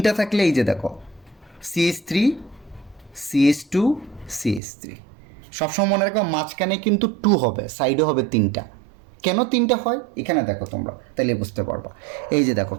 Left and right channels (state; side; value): drops out; left; at 4.6 s